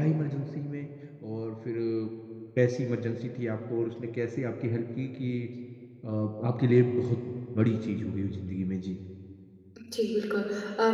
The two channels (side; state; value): both; identical; correlation 1.00